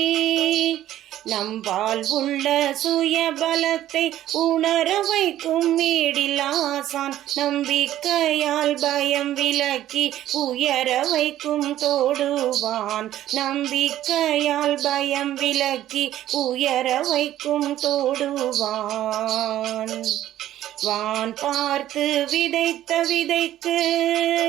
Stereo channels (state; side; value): quieter; left; 13.0 dB